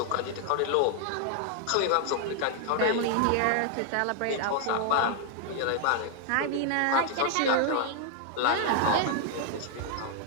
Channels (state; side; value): different; both; correlation 0.00